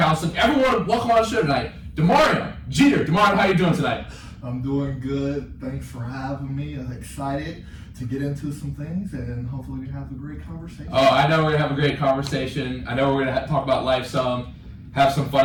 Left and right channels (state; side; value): identical; both; correlation 1.00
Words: Everyone, welcome on the show tonight, Damarion Jeter. Damarion, how are you doing tonight? I'm doing good. Thanks for having me. I'm excited to get into some things, and hopefully we have a great conversation. Oh, I know we're going to have a great conversation. I know we're going to talk about life some, have some